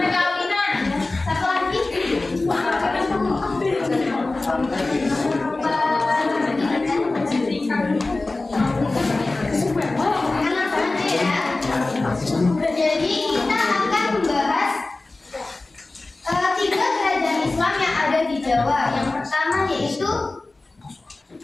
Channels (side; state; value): right; quieter; 3.2 dB